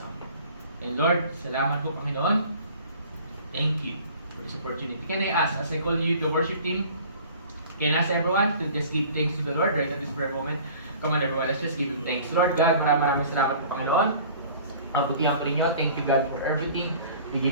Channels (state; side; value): inverted; both; correlation -0.47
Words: And Lord, salamat po, Panginoon. Thank you for this opportunity. Can I ask, as I call you the worship team, can I ask everyone to just give thanks to the Lord right at this very moment? Come on everyone, let's just give Him thanks. Lord God, maraming salamat po, Panginoon. Ang butihan po ninyo. Thank you, God, for everything. We